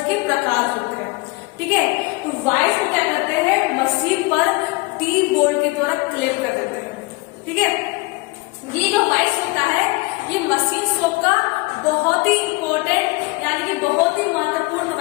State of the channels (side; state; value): right; quieter; 24.7 dB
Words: के प्रकार होते हैं। ठीक है, तो वॉइस को क्या करते हैं, मशीन पर टी बोल्ट के द्वारा क्लेम कर देते हैं। ठीक है, ये जो वॉइस होता है, ये मशीन शॉप का बहुत ही इंपॉर्टेंट यानी कि बहुत ही महत्वपूर्ण